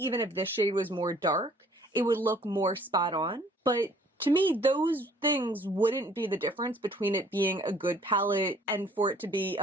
if this shade was more dark, it would look more spot on. But to me, those things wouldn't be the difference between it being a good palette and for it to be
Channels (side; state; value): both; normal; correlation 0.57